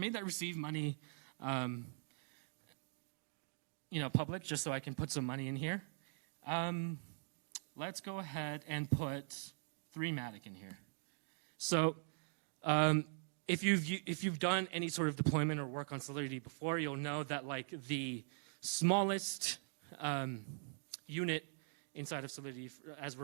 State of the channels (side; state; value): left; silent; digital silence